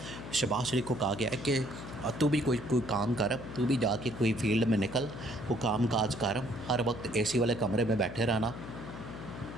शहबाज शरीफ को कहा गया है कि तू भी कोई काम कर, तू भी जाके कोई फील्ड में निकल, वो काम काज कर, हर वक्त AC वाले कमरे में बैठे रहना,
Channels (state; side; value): noise; left; hum, 11 dB below the sound